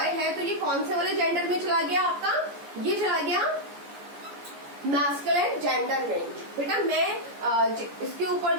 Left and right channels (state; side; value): late; left; 14 ms